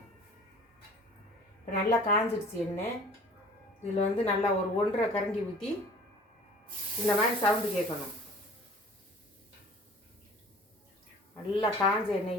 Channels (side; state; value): both; normal; correlation 0.46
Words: இப்போ நல்லா காஞ்சிடுச்சு எண்ணெய். இதில் நல்லா ஒரு 1.5 கரண்டி ஊற்றி இந்த மாதிரி சவுண்டு கேட்கணும். நல்லா காஞ்ச